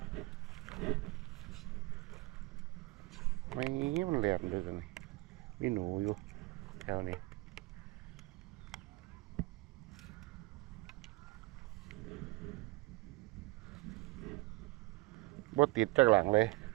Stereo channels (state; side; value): quieter; left; 22.9 dB